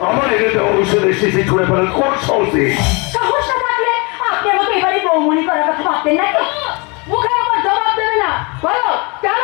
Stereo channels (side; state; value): right; quieter; 29.3 dB